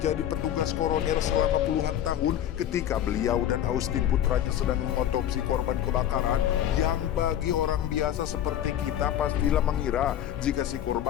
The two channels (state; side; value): quieter; right; 11.1 dB